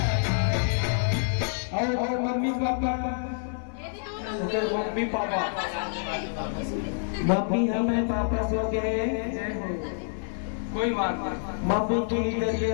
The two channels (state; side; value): silent; right; 60 dB below the other